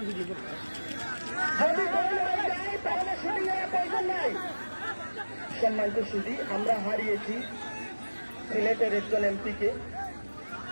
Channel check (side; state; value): both; inverted; correlation -1.00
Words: যদি গোল হয়ে যায় তাহলে শুটিং এর প্রয়োজন নাই। সম্মানিত সুধী, আমরা হারিয়েছি সিলেটের একজন এমপিকে,